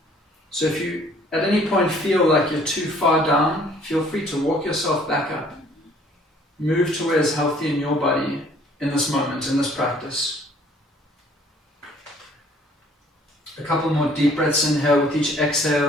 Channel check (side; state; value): both; normal; correlation 0.58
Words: So if you at any point feel like you're too far down, feel free to walk yourself back up. Move to where is healthy in your body in this moment, in this practice. A couple more deep breaths in here with each